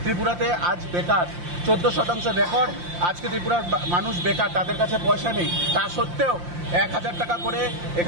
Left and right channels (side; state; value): left; late; 5.7 ms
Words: ত্রিপুরাতে আজ বেকার, 14% রেকর্ড। আজকে ত্রিপুরার মানুষ বেকার, তাদের কাছে পয়সা নেই। তা সত্ত্বেও 1000 টাকা করে